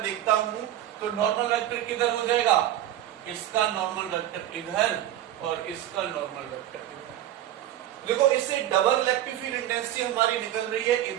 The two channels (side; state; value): left; quieter; 12.5 dB